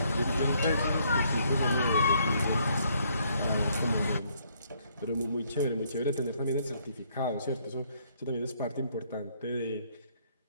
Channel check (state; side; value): inverted; both; correlation -0.68